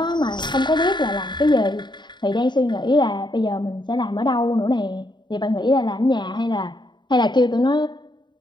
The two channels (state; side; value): late; right; 0.22 ms